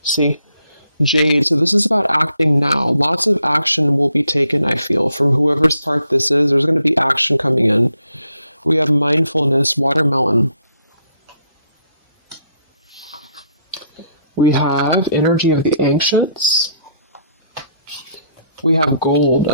See, Jade. So this is about acting now. Lots of action will be taken, I feel, from whoever's part this is. There's going to be action coming in. We have mindfulness, watermelon. We have energy of the ancients. We have gold,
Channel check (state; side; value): inverted; both; correlation -0.71